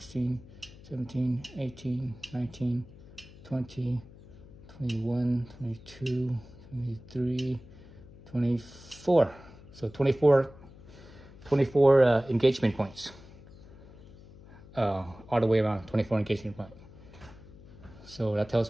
17, 18, 19, 20, 21, 22, 23, 24. So 24 engagement points. All the way around, 24 engagement points. So that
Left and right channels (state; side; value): noise; left; hum, 20 dB below the sound